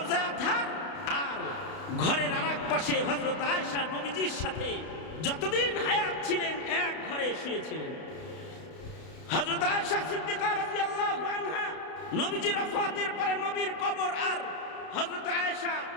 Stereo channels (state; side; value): late; right; 32 ms